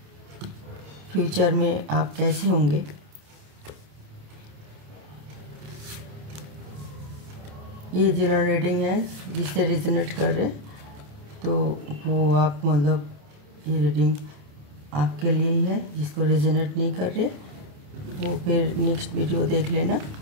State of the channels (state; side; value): late; left; 28 ms